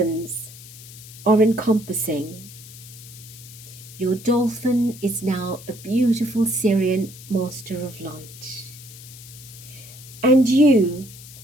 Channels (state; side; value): noise; left; hiss, 17 dB below the sound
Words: are encompassing. Your dolphin is now a beautiful Sirian Master of Light. And you